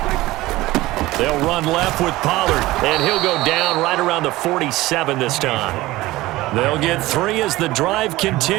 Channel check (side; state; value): left; quieter; 18.2 dB